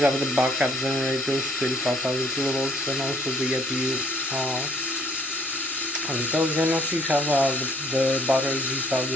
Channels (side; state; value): both; normal; correlation 0.62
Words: have the backup generators 35,000 kilovolts, and also the APU and those, and also you have the batteries. You have